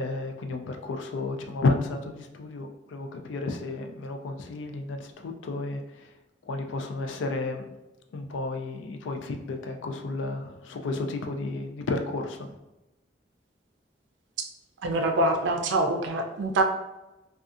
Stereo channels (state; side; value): normal; both; correlation 0.24